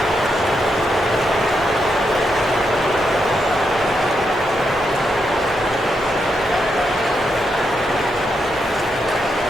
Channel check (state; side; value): noise; left; hum, 23 dB below the sound